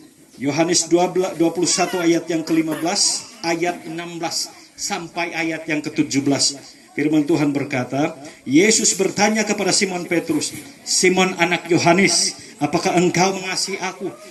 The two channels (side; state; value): both; identical; correlation 1.00